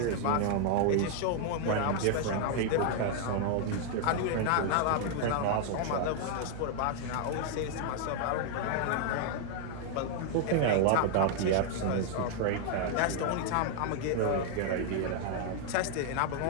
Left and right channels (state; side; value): different; both; correlation 0.00